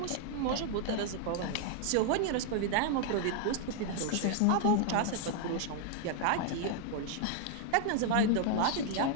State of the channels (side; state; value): both; different; correlation 0.00